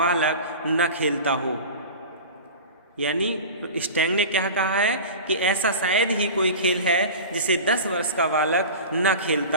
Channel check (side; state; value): both; inverted; correlation -0.33